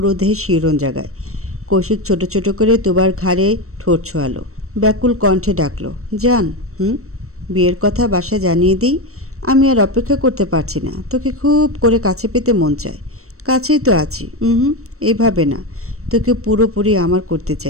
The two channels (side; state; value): left; late; 0.63 ms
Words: দেহে শিহরণ জাগায়। কৌশিক ছোট ছোট করে তুবার ঘাড়ে ঠোঁট ছোঁয়ালো। ব্যাকুল কণ্ঠে ডাকলো, যান। বিয়ের কথা বাসায় জানিয়ে দিই। আমি আর অপেক্ষা করতে পারছি না, তোকে খুব করে কাছে পেতে মন চায়। কাছেই তো আছি। এইভাবে না, তোকে পুরোপুরি আমার করতে